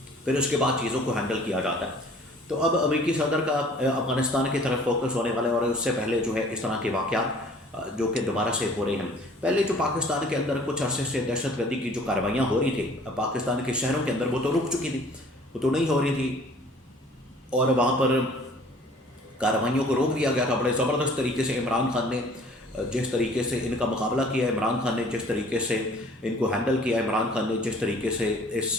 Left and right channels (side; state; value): both; normal; correlation 0.52